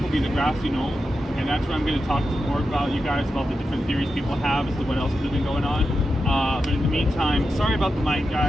will be the grassy knoll, and that's where I'm going to talk more about you guys about the different theories people have as to what else could have been going on. But in the meantime, sorry about the mic,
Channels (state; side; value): normal; both; correlation 0.89